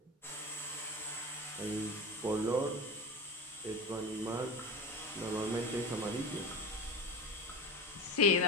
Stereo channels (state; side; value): normal; both; correlation 0.27